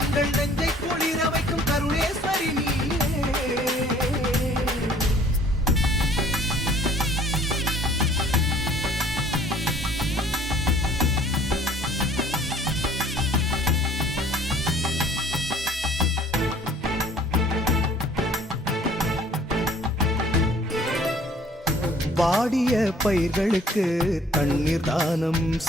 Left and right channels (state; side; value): normal; both; correlation 0.55